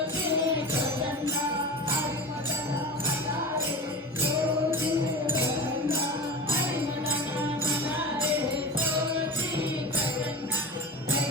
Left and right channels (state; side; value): normal; both; correlation 0.31